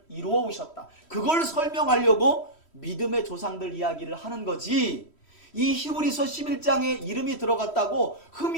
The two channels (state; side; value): late; right; 3.1 ms